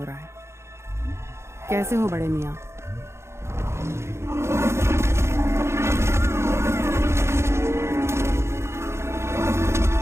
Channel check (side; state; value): left; late; 0.13 ms